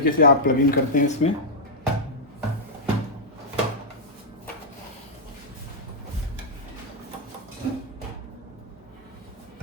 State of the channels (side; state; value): both; normal; correlation -0.06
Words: से आप प्लग इन करते हैं इसमें।